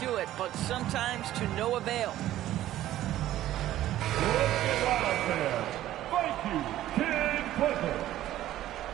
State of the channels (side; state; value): left; quieter; 13.7 dB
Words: it, but sometimes to no avail. Thank you, Ken Clifford.